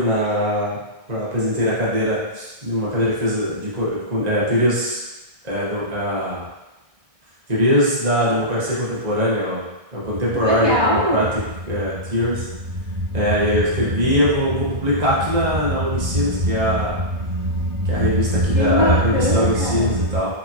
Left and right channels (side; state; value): left; late; 1.6 ms